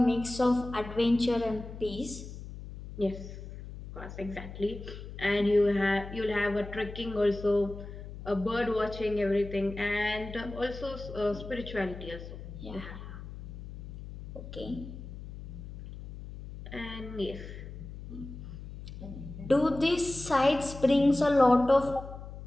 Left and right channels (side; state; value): left; noise; hum, 12 dB below the sound